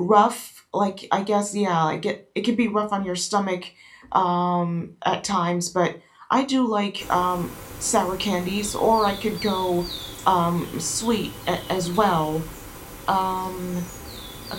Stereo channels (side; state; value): both; identical; correlation 1.00